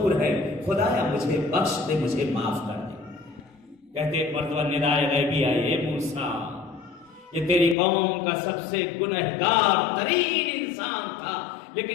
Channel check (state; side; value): drops out; right; at 7.8 s